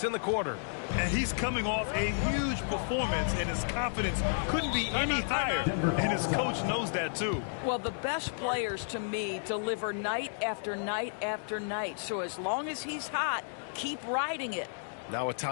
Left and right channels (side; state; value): right; silent; digital silence